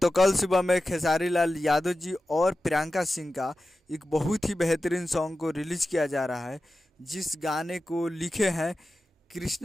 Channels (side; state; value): both; normal; correlation 0.93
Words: कल सुबह में खेसारी लाल यादव जी और प्रियंका सिंह का एक बहुत ही बेहतरीन सॉन्ग को रिलीज किया जा रहा है, जिस गाने को लिखे हैं